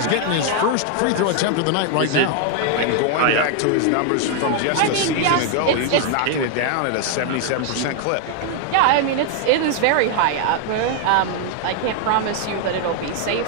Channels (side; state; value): both; different; correlation 0.00